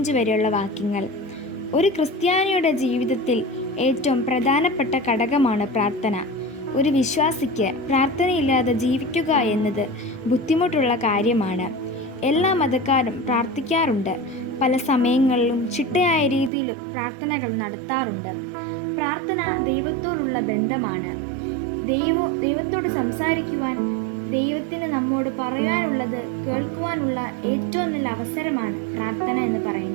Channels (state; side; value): drops out; left; at 16.5 s